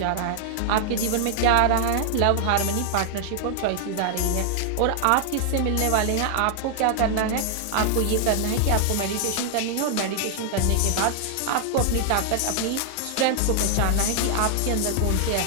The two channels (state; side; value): different; both; correlation 0.00